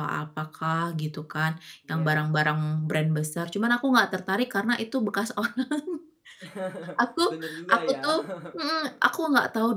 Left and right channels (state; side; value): identical; both; correlation 1.00